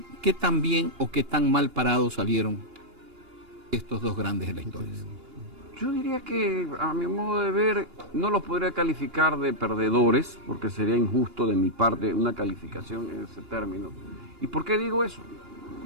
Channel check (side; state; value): left; late; 2.8 ms